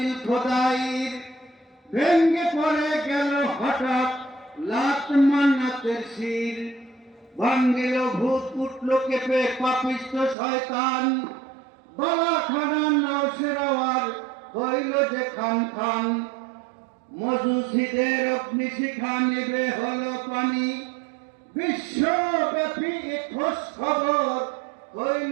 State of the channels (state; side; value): drops out; left; at 10.4 s